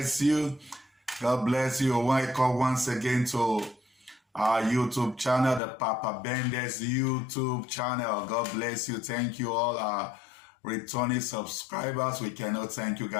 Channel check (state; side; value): drops out; right; at 5.6 s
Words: you. God bless you. Welcome once again to our YouTube channel, the Papa Bendes YouTube channel. God bless you. Thank you all our returning subscribers. We cannot thank you